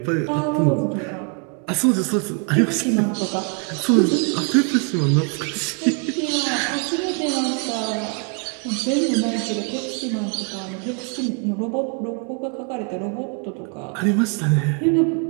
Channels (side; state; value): left; quieter; 37.7 dB